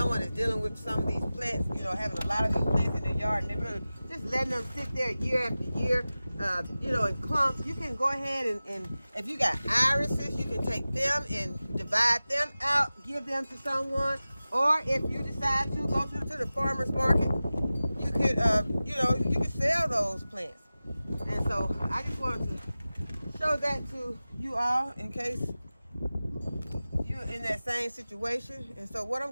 is dealing with some of these plants, you know, having a lot of these plants in their yard and they're really just letting them sit there year after year, you know, in clumps. You can go ahead and if you got irises, you can take them and divide them out, give them to someone, or if you decide to go to the farmer's market, you could, you know, you can sell those plants. And so I just wanted to show that to you all in case you're in that same situation. And so what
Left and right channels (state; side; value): inverted; both; correlation -0.96